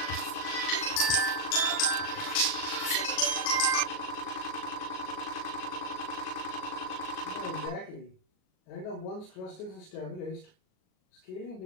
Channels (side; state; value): right; late; 38 ms